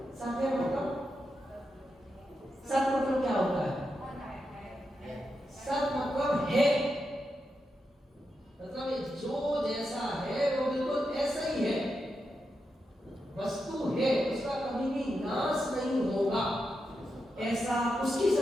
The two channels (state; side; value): normal; both; correlation 0.86